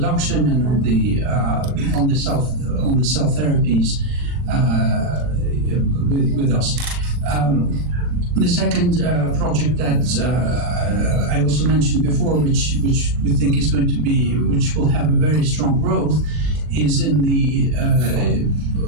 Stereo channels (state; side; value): late; left; 40 ms